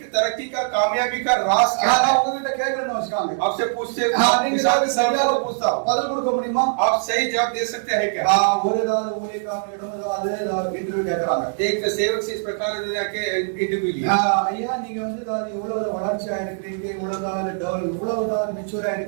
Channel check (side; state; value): left; silent; digital silence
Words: तरक्की का कामयाबी का राज क्या है? கேட்கறேன்னு வச்சுக்காங்க. आपसे पूछते நீங்க சரியாக पूछता हूं, பதில் கொடுக்க முடியுமா? आप सही जवाब दे सकते हैं क्या? ஒரு ஏதாவது ஊழியக்காரனிடம் ஏதாவது இன்டர்வியூ கேட்கறாங்க. एक सेवक से इस प्रकार जाके इंटरव्यू लिया, ஐயா நீங்க வந்து இவ்வளவு வளர்ச்சியா இருக்கிறீங்க, இவ்வளவு மெச்சூரா